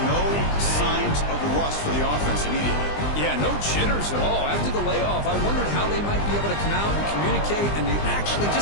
no signs of rust for the offense immediately. Yeah, no jitters at all. After the layoff, I wondered how they might be able to come out and communicate and actually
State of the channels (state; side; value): late; right; 20 ms